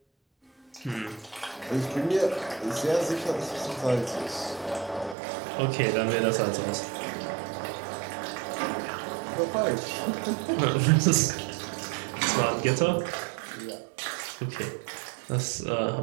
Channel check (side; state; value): left; drops out; at 5.2 s